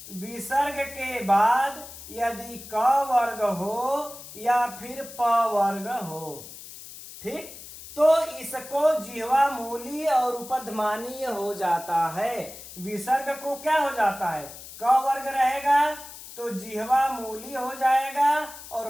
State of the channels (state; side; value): noise; left; hiss, 15 dB below the sound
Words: विसर्ग के बाद यदि क वर्ग हो या फिर प वर्ग हो, ठीक, तो इसको जिह्वा मूली और उपध्मानीय हो जाता है। विसर्ग को क्या हो जाता है? क वर्ग रहेगा तो जिह्वा मूली हो जाएगा